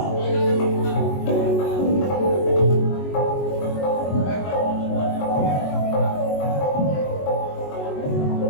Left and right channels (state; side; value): late; right; 22 ms